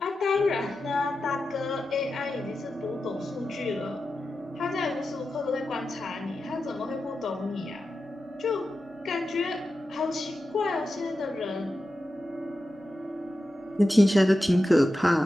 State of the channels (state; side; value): normal; both; correlation 0.91